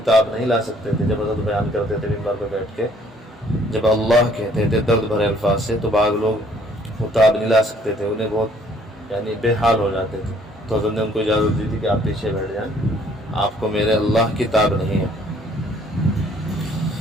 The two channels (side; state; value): both; normal; correlation 0.61